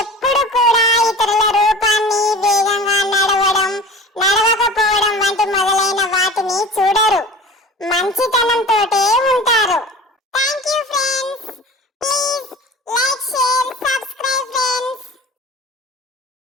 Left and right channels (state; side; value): normal; both; correlation 0.38